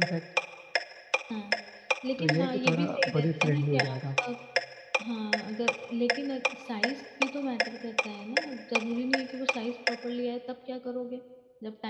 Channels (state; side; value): identical; both; correlation 1.00